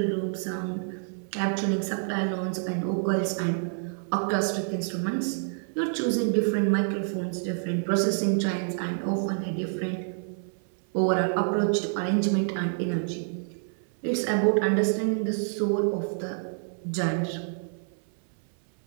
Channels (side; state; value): left; silent; 60 dB below the other